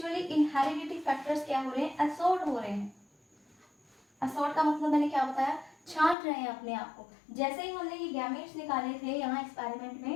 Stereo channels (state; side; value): drops out; right; at 6.2 s